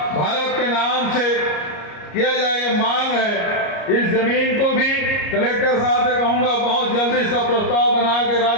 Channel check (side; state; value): right; late; 34 ms